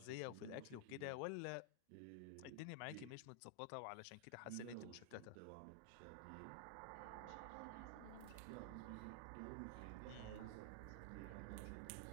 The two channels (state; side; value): different; both; correlation -0.01